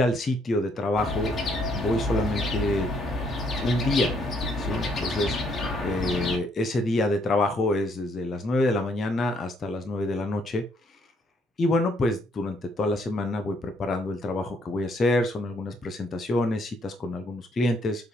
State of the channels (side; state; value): both; normal; correlation 0.69